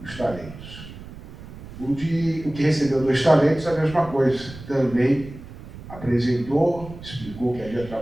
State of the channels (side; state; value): right; noise; rumble, 15 dB below the sound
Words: os talentos. O que recebeu 2 talentos, a mesma coisa, também apresentou, explicou que havia